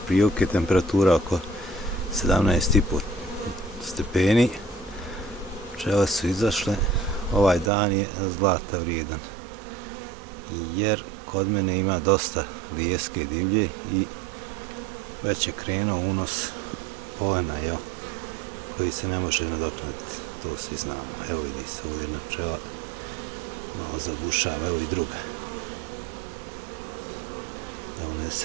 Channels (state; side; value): drops out; left; at 7.7 s